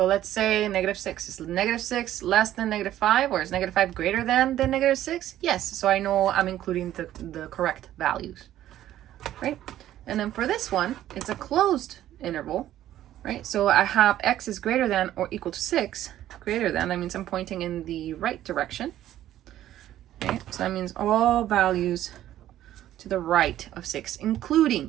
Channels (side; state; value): left; quieter; 12.8 dB